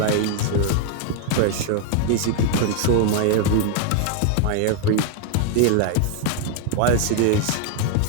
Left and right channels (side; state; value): both; different; correlation 0.00